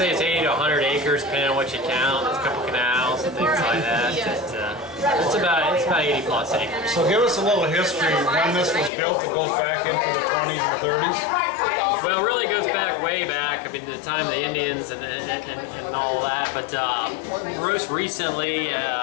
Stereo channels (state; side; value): drops out; right; at 8.9 s